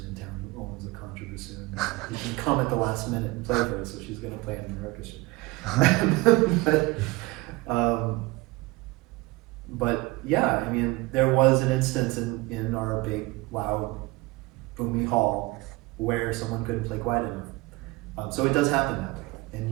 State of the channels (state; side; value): quieter; left; 21.8 dB